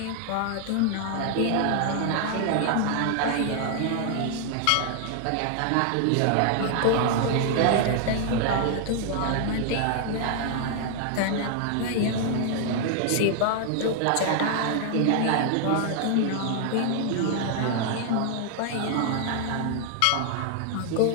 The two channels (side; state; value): both; different; correlation 0.00